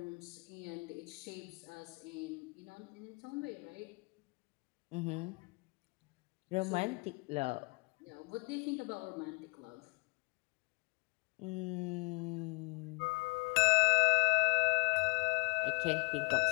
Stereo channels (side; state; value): right; quieter; 30.8 dB